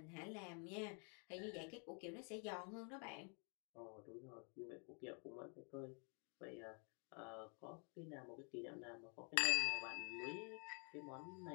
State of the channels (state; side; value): quieter; right; 37.9 dB